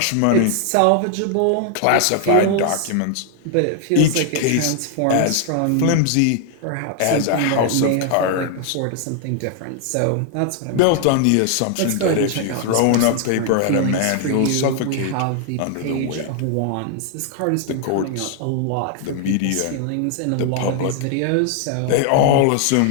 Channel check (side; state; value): both; different; correlation 0.00